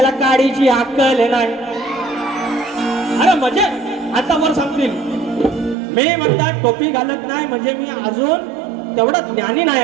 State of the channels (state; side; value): drops out; left; at 5.8 s